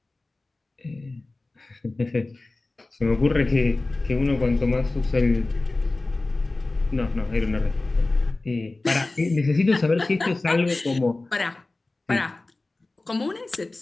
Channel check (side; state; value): right; quieter; 3.1 dB